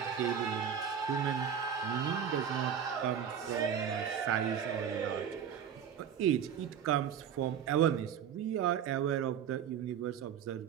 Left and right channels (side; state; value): left; quieter; 8.3 dB